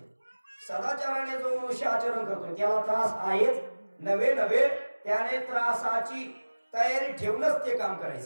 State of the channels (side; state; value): both; inverted; correlation -1.00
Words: सदाचाराने जो मनुष्य आचरण करतो त्याला त्रास आहेच. नवे नवे त्याने त्रासाची तयारी ठेवूनच ते काम